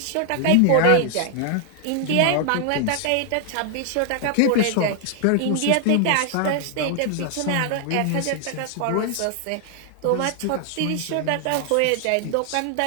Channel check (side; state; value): both; different; correlation 0.00